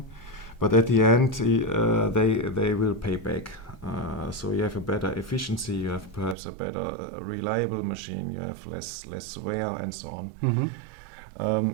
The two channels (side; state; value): left; drops out; at 6.4 s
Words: but at the end they will pay back. So you have a better efficiency, you have perhaps a better reliable machine, you have less wear and so on.